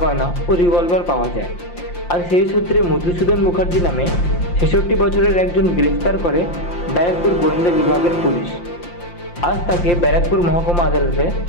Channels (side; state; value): right; late; 5.7 ms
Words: গয়না ও রিভলভার পাওয়া যায়। আর সেই সূত্রে মধুসূদন মুখার্জি নামে ৬৬ বছরের একজন গ্রেফতার করে ব্যারাকপুর গোয়েন্দা বিভাগের পুলিশ। আজ তাকে ব্যারাকপুর মহকুমা আদালতে